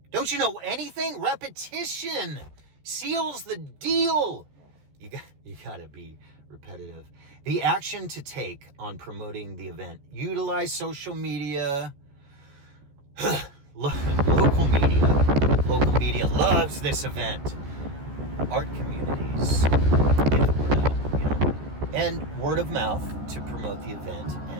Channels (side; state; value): left; late; 14 ms